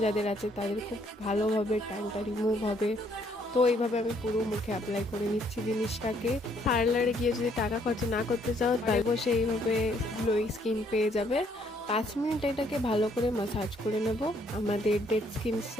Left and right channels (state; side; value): normal; both; correlation 0.67